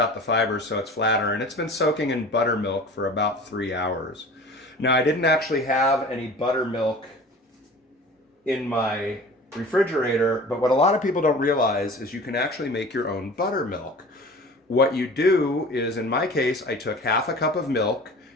the fibers so it's flatter, and it's been soaking in buttermilk for about 3 hours. Now, I didn't actually have any buttermilk in my refrigerator, but what a lot of people don't realize is you can actually make your own buttermilk. What you do is, in my case, I took half a cup of milk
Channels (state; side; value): normal; both; correlation 0.41